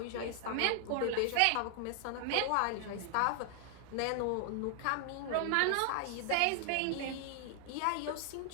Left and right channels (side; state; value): both; different; correlation 0.00